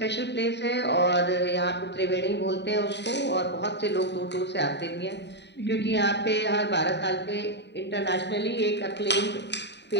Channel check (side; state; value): right; late; 0.50 ms